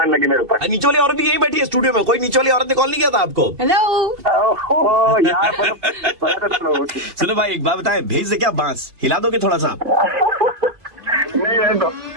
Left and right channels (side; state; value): left; late; 2.5 ms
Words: लगी मेरे ऊपर। नीचे वाली औरत भी यही बैठी है स्टूडियो में। कोई नीचे वाली औरत ने कॉल नहीं किया था आपको? हेलो यार सुनो भाई, एक बात बताए, भेज दे क्या बांस? हिला दोगे थोड़ा सा?